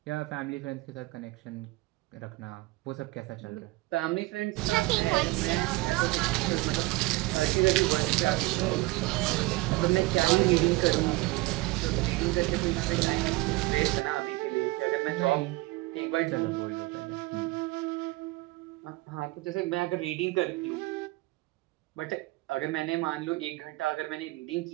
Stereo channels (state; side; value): quieter; left; 21.4 dB